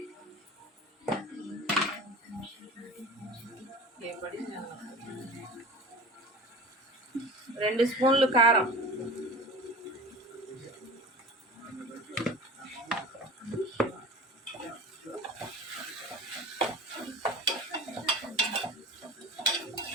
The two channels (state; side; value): normal; both; correlation 0.36